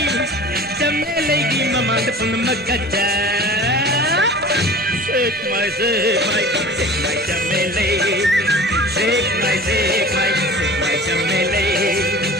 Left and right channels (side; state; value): both; normal; correlation 0.41